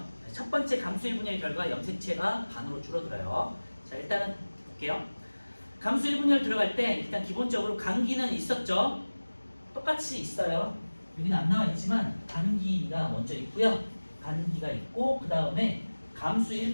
첫 번째 감수 1분열 결과 염색체가 반으로 줄어들어요. 자, 일단은 볼게요. 감수 1분열 들어갈 때 일단 기본적으로 간기는 있었죠. 똑같이 있어요. 여기는 안 나와 있지만 간기가 먼저 있고요. 간기가 있고 그 다음에 감수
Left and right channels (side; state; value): both; inverted; correlation -1.00